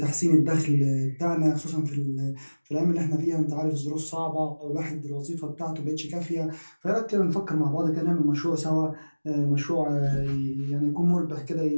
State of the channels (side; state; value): both; inverted; correlation -1.00